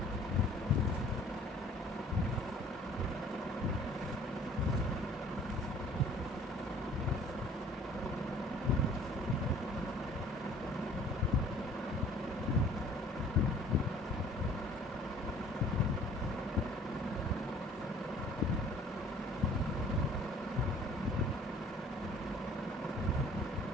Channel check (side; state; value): both; normal; correlation 0.53